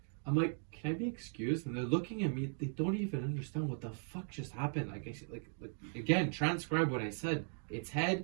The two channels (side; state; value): left; silent; 52 dB below the other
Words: I'm like, can I be excused? And they're looking at me. They don't even understand what the fuck just happened. Like again, transcribe what I said. Its head.